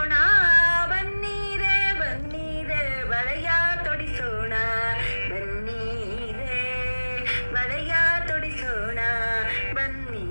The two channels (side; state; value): both; inverted; correlation -1.00